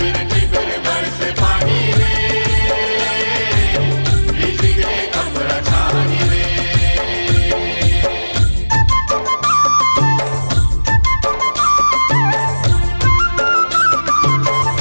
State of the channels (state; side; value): inverted; both; correlation -1.00